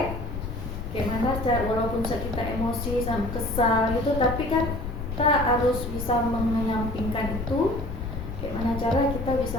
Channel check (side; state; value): left; noise; rumble, 6 dB below the sound